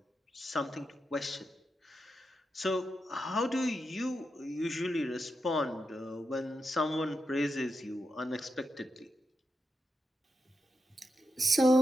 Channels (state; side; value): normal; both; correlation 0.87